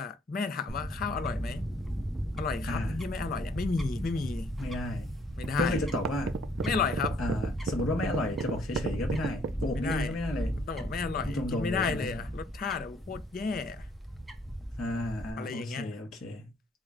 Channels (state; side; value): normal; both; correlation 0.64